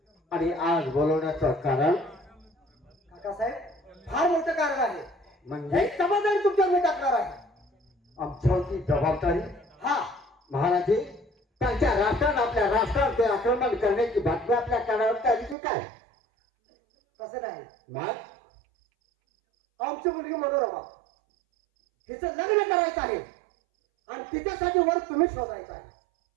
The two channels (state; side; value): drops out; left; at 15.6 s